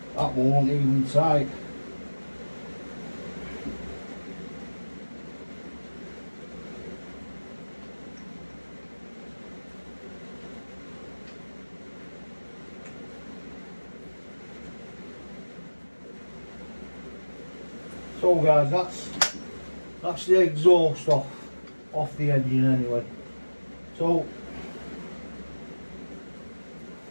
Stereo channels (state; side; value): inverted; both; correlation -1.00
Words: That won't even tight. So guys, that's the exhaust off the engine anyway. So